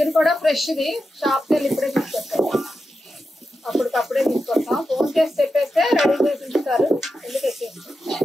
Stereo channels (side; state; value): both; normal; correlation 0.89